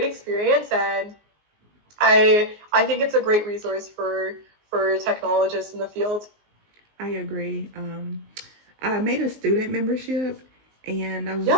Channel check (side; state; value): left; late; 19 ms